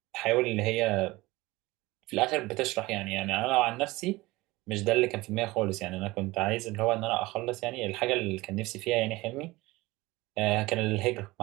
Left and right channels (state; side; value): quieter; left; 20.4 dB